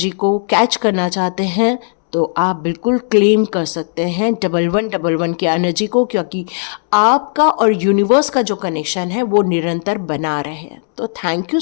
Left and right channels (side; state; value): right; silent; 69 dB below the other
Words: को कैच करना चाहते हैं तो आप बिल्कुल क्लेम कर सकते हैं 1111 की एनर्जी को, क्योंकि आपका और यूनिवर्स का जो कनेक्शन है वो निरंतर बना रहे। तो thank you